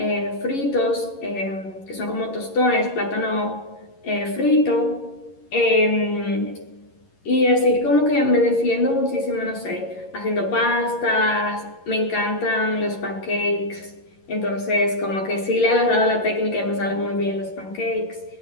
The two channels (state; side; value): late; right; 11 ms